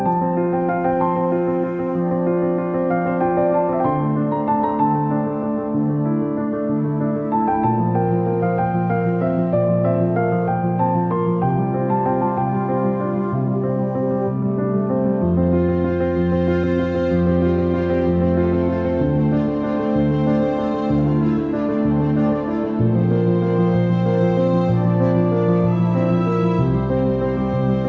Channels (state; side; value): identical; both; correlation 1.00